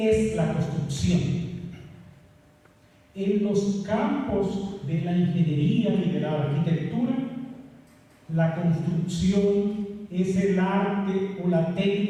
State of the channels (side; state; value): both; identical; correlation 1.00